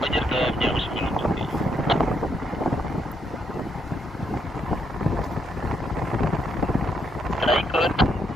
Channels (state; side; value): normal; both; correlation 0.76